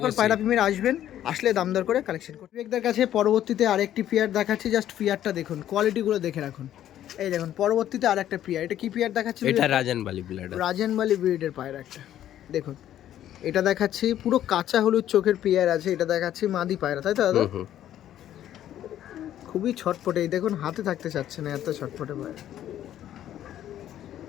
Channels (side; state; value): right; quieter; 11.7 dB